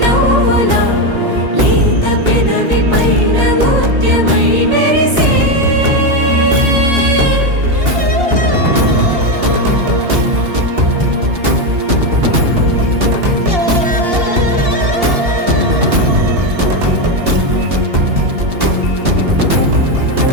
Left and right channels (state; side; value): late; left; 2.8 ms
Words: నవ్వులా లేత పెదవి పైన ముత్యమై మెరిసే